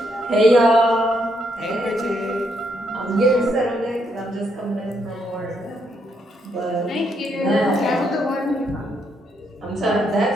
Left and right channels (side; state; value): both; normal; correlation 0.76